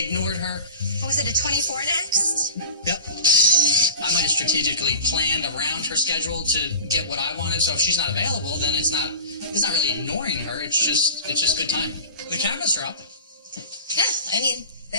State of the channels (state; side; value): inverted; both; correlation -0.34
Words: her. What was it, a 24 next? Yep. I might have strategically planned around her schedule to get what I wanted. So if she's not available, then it's not really ignoring her. It's just good timing. The cabinets are up. Yeah, I mean,